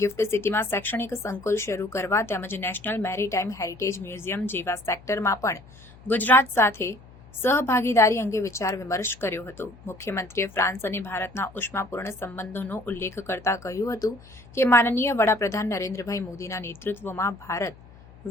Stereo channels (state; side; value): noise; left; hum, 22 dB below the sound